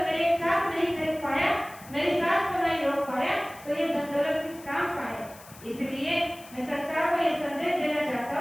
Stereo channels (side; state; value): left; noise; hiss, 20 dB below the sound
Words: मेरी एक सांस नहीं खरीद पाया, मेरी सांस को नहीं रोक पाया, तो ये धन दौलत किस काम का है? इसलिए मैं संसार को ये संदेश देना चाहता